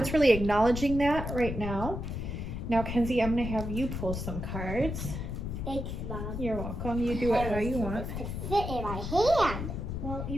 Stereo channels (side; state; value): left; noise; rumble, 5 dB below the sound